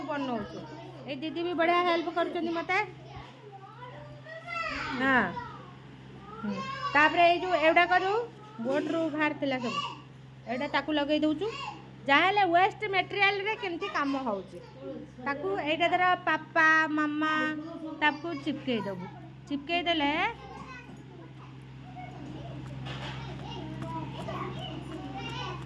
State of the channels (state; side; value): identical; both; correlation 1.00